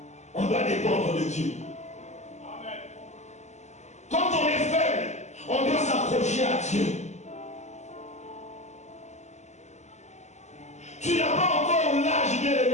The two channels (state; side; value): late; right; 0.33 ms